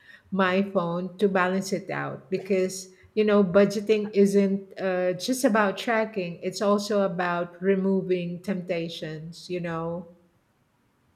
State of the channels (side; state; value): both; identical; correlation 1.00